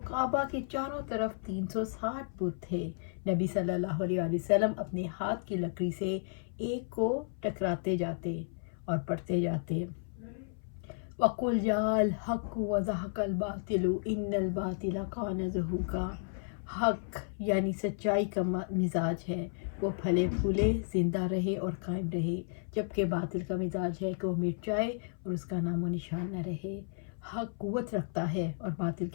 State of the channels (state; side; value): silent; right; 56 dB below the other